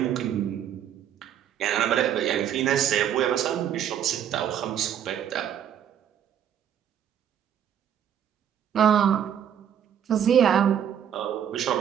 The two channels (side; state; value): left; quieter; 9.4 dB